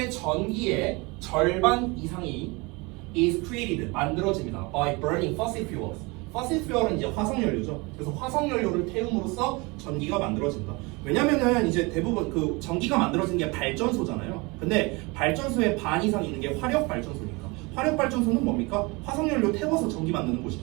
전기의 절반 이상이 is created, 만들어집니다. by burning fossil fuels. fossil fuel은 이제 화석연료죠. 그래서 화석연료를 태움으로써 전기가 만들어진다. 왜냐면은 이제 대부분 그 전기가 만들어진 게 발전소잖아요. 근데 발전소의 반 이상 있는 게 화력 발전소니까. 화력 발전소는 뭡니까? 화석연료 태워서 전기 만드는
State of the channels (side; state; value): left; quieter; 26.4 dB